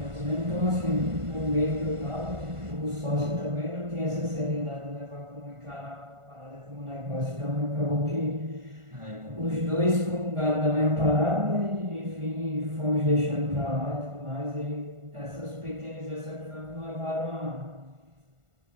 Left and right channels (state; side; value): late; left; 1.4 ms